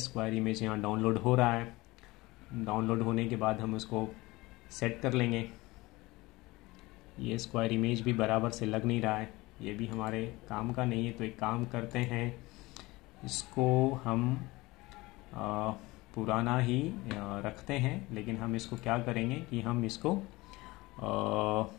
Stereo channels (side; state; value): right; quieter; 21.1 dB